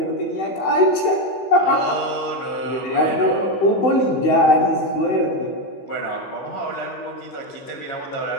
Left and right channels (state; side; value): late; right; 16 ms